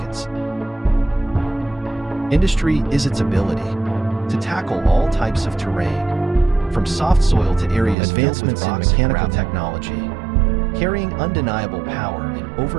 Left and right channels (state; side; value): drops out; left; at 8.0 s